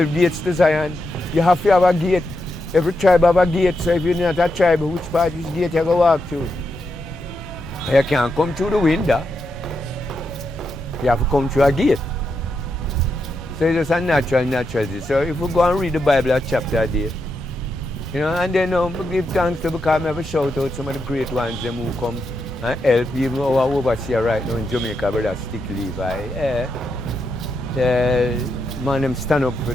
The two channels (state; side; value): normal; both; correlation 0.84